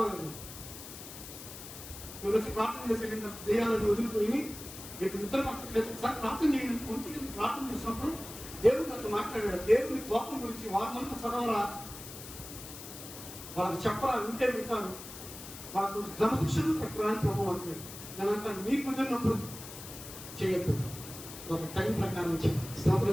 మీరు వచ్చి ప్రార్థన చేసేటంటే దెయ్యాలను వదిలిపోయి మీకు నిద్ర పట్టలేదు. ఒకసారి ప్రార్థన చేయండి. 1 గంటకు ప్రార్థన చేసినప్పుడు దేవుడు నాతో మాట్లాడాడు. దేవుని కోపం గురించి వారినంతా చదవరా, వాళ్ళకి చెప్పరా, వింటే వింటారు, వాళ్ళకు కొంచెం క్రమశిక్షణ పెట్టరా అని ప్రభు అంటాడు. నేను అంటాను, మీకు కుదిరినప్పుడు చేయొద్దు, ఒక టైం ప్రకారం చేయండి.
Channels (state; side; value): noise; left; hiss, 12 dB below the sound